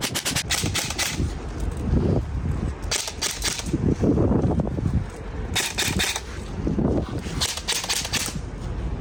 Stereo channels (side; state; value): both; identical; correlation 1.00